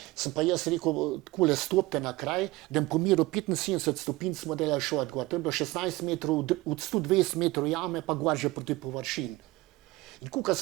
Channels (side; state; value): left; quieter; 20.0 dB